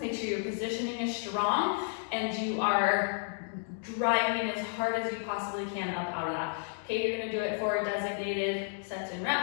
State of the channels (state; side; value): silent; right; digital silence